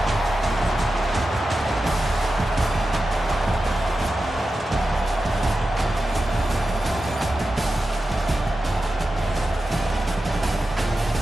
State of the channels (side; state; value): both; normal; correlation 0.92